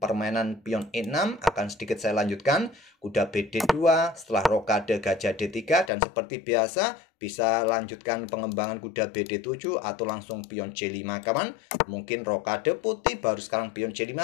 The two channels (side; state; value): right; drops out; at 5.9 s